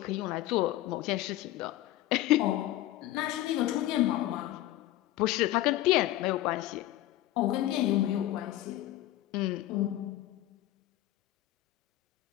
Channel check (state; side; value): quieter; right; 15.0 dB